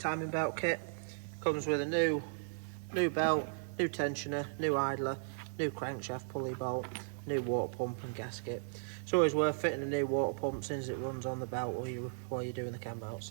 belt kit. Comes with a new belt, new tensioner, new idler, new crankshaft pulley bolt, new water pump and gasket. It's always worth fitting a new water pump since it runs on the belt while you're doing the cam belt.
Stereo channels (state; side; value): silent; left; digital silence